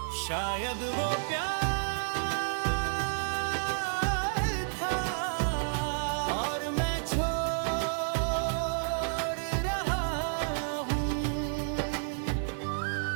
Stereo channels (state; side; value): silent; left; 57 dB below the other